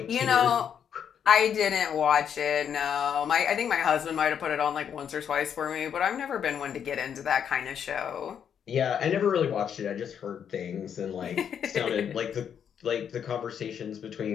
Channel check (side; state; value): right; quieter; 8.2 dB